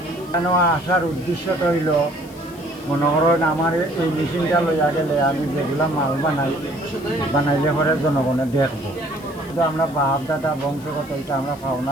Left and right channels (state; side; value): noise; left; hiss, 22 dB below the sound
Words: এখানে আসার উদ্দেশ্যটা হইল, মনে করেন আমার এই মেশিনটা লইয়া গেলে আমি যেগুলা মাল বানাইলে পরে জনগণে দেখবো। কিন্তু আমরা বাপ দাদা বংশগত এটা আমরা পাও